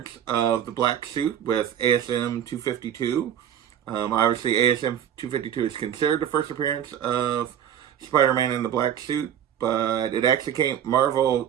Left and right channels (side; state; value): left; quieter; 9.7 dB